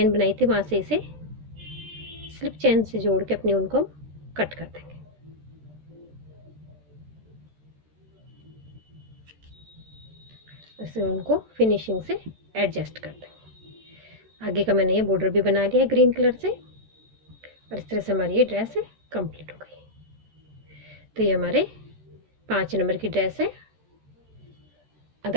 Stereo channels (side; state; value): left; late; 13 ms